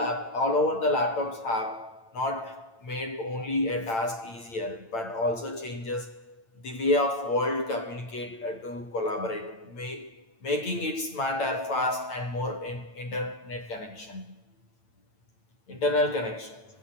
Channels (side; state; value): right; late; 8.8 ms